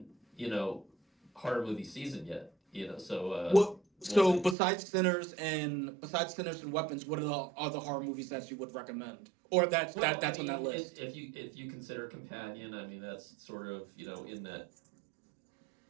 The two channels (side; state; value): left; drops out; at 4.5 s